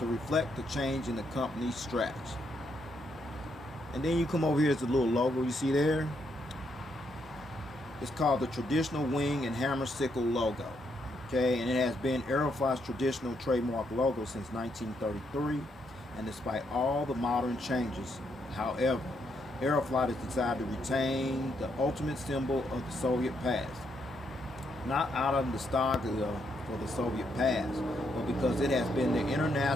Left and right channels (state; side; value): normal; both; correlation 0.77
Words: reflect the change in the company's strategy. And then you come over here, it's a little logo you see there. It's called the traditional wing and hammer sickle logo. Okay, and it has been Aeroflot's traditional trademark logo since 1933. And despite all the modern changes, however, Aeroflot has decided to retain the ultimate symbol of the Soviet past. Not out of nostalgia for the Soviet past, but because it has been the